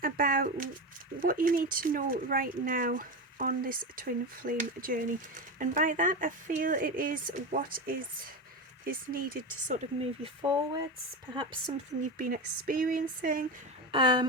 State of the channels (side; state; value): both; normal; correlation 0.19